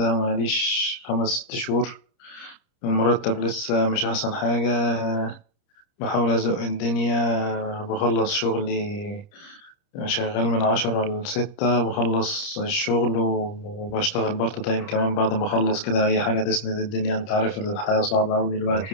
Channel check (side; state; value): right; late; 30 ms